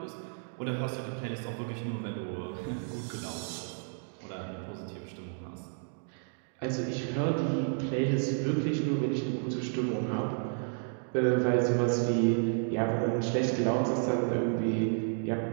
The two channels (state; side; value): silent; left; 57 dB below the other